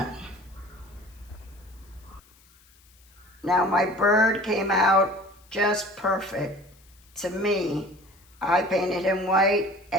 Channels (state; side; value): noise; left; hiss, 29 dB below the sound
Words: Now my bird came out just perfect to me. I painted him white